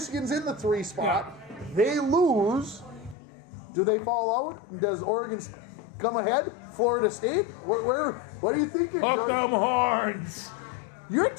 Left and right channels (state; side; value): drops out; right; at 3.2 s